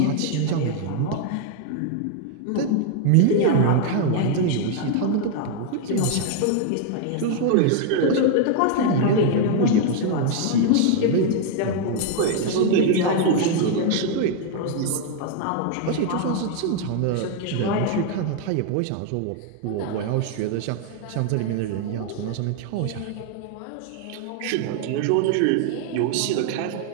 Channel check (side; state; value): both; different; correlation 0.00